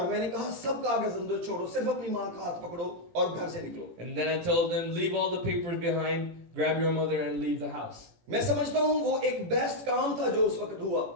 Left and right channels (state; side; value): late; left; 18 ms